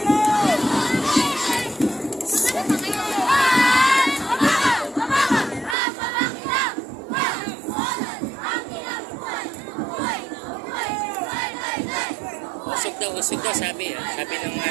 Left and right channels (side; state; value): left; drops out; at 5.8 s